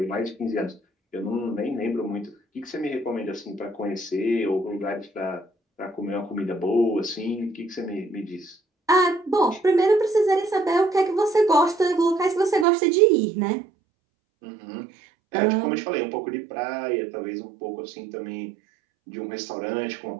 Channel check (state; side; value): drops out; left; at 12.7 s